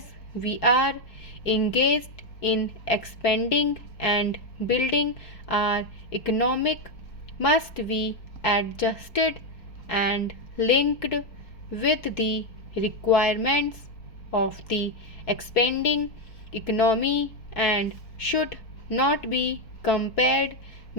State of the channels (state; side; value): late; right; 4.6 ms